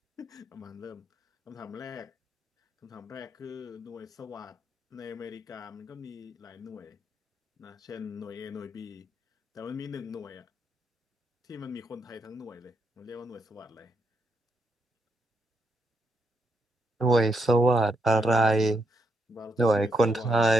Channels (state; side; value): normal; both; correlation 0.79